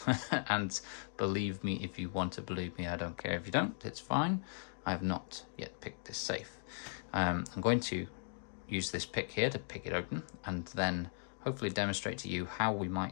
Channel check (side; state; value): right; silent; digital silence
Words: And believe me if you want to believe me, I don't care if you don't, it's fine. I have not yet picked this safe. I'm going to use this pick here to pick it open, and then hopefully demonstrate to you how we